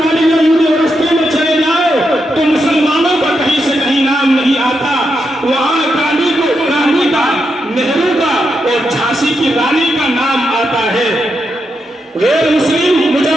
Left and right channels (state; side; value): normal; both; correlation 0.84